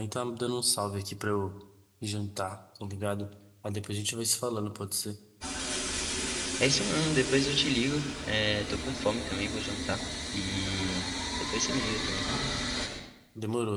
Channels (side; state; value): both; identical; correlation 1.00